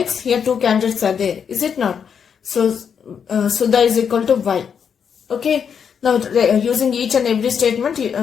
Here two candidates are there. Is it not? So, Sudha is equal to Y. Okay. Now, using each and every statement,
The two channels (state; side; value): quieter; right; 7.2 dB